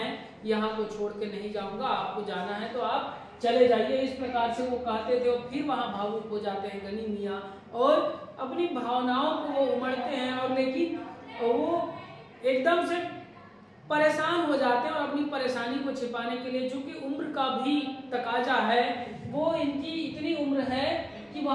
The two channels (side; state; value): both; identical; correlation 1.00